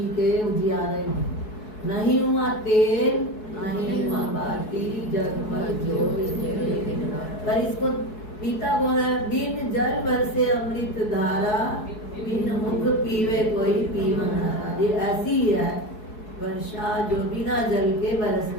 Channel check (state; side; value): late; right; 4.7 ms